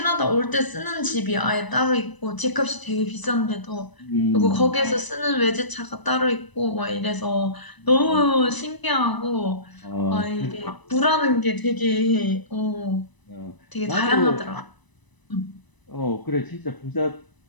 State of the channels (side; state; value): right; late; 1.0 ms